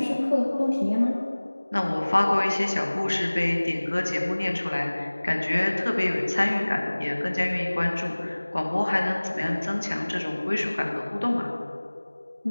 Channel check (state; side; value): inverted; both; correlation -1.00